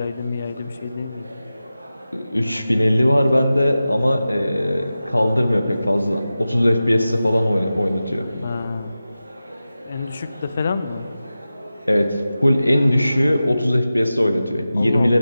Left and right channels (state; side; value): inverted; both; correlation -0.94